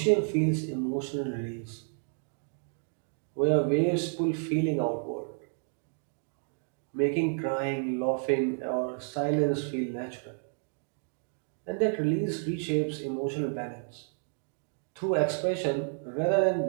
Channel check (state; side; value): silent; left; 57 dB below the other